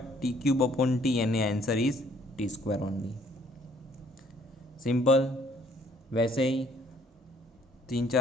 t³ अपॉन t, यानी answer is t² only. Simple. वैसे ही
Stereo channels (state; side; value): normal; both; correlation 0.62